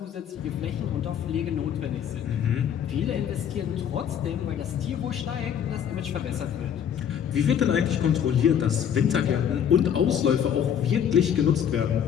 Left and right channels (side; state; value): right; quieter; 8.8 dB